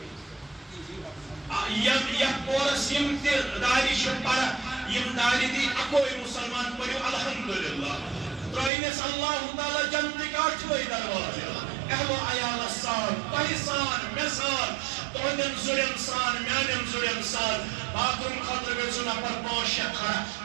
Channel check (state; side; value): drops out; left; at 8.7 s